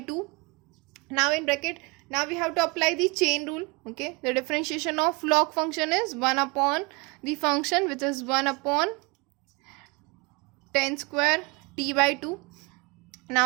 Now in bracket, now we have to apply the chain rule. Okay, the differentiation of log function is 1 upon the function which is 1 upon tan square t by 2.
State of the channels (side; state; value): left; quieter; 28.3 dB